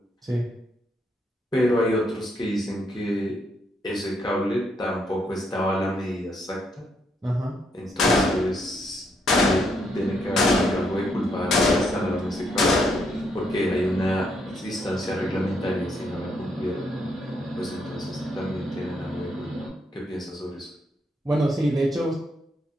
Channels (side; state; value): both; normal; correlation 0.75